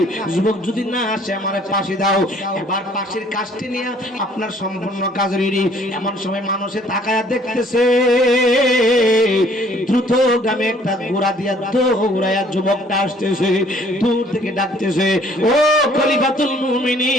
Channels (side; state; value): both; normal; correlation 0.58